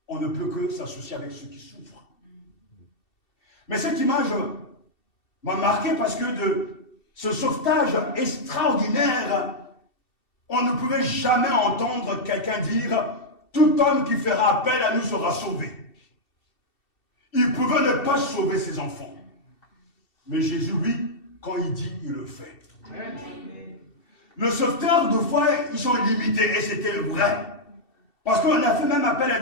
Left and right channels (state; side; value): late; right; 2.7 ms